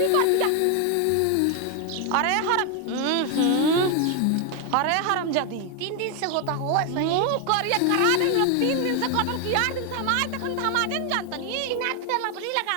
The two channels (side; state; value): both; different; correlation 0.01